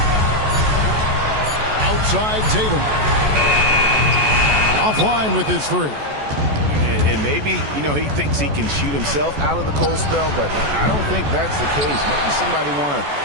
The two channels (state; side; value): late; left; 14 ms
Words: Outside Tatum. Offline with his 3. And maybe, he thinks he can shoot himself out of the cold spell, but I don't think that's the case. Maybe somebody want to